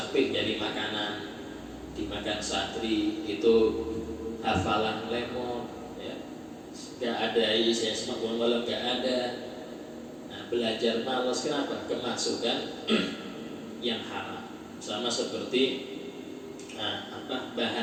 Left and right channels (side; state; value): both; identical; correlation 1.00